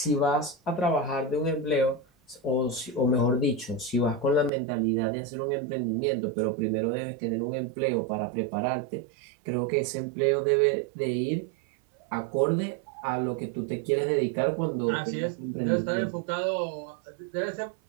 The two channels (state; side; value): drops out; left; at 4.5 s